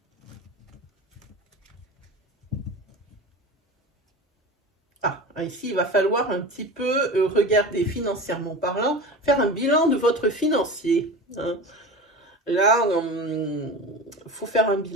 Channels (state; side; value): normal; both; correlation 0.31